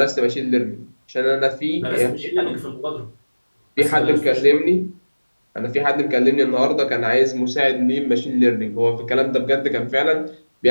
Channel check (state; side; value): inverted; both; correlation -1.00